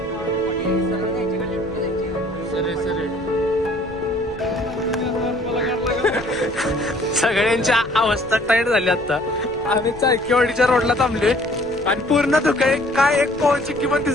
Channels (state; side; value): noise; left; rumble, 19 dB below the sound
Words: सगळ्यांच्या अवस्था टाईट झाली. आता आम्ही चाळकेवाडीच्या रोडला थांबलोय आणि पूर्ण धुके. काय एक पॉईंटची किंमत